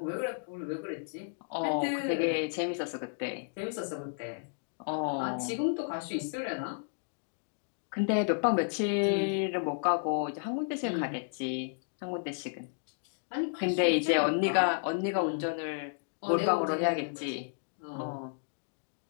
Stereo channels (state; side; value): silent; right; digital silence